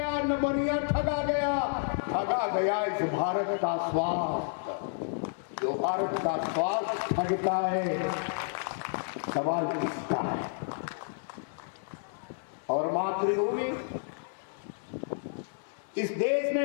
न बनिया ठगा गया इस भारत का स्वास्थ्य। जो भारत का स्वास्थ्य ठगता है, सवाल किसका है। और मातृभूमि, इस देश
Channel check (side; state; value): right; silent; digital silence